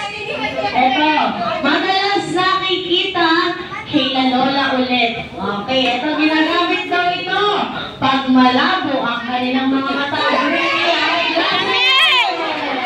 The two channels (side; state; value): both; identical; correlation 1.00